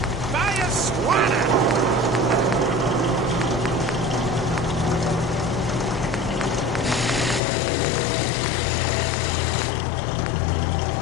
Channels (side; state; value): right; drops out; at 7.4 s